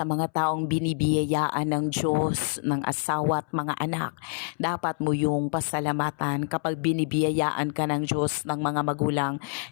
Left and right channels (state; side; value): silent; right; 60 dB below the other